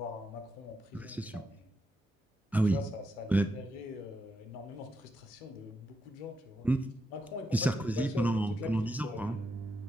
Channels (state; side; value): normal; both; correlation 0.83